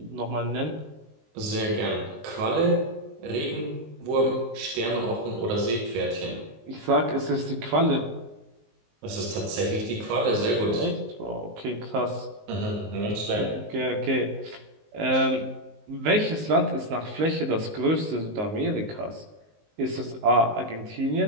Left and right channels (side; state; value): left; late; 19 ms